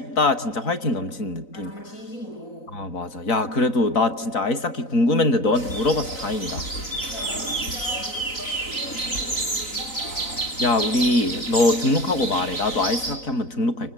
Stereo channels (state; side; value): late; right; 4.0 ms